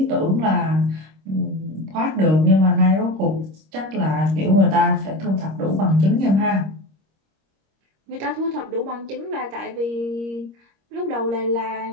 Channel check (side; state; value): left; late; 26 ms